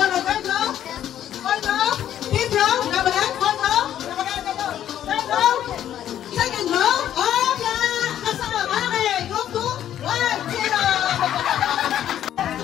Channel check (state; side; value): quieter; right; 11.0 dB